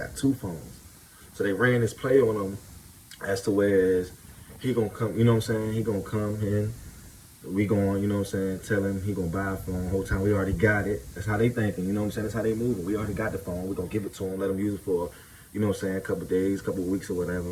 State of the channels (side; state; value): both; identical; correlation 1.00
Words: two phones. So they ran this play on him as to whereas he gonna come, you know what I'm saying? He gonna come in. We going, you know what I'm saying, tell him he gonna buy a phone. The whole time we already got it. That's how they thinking, you know what I'm saying? That's how they moving. We already got the phone. We gonna give it to him, let him use it for, you know what I'm saying, a couple of days, couple of weeks or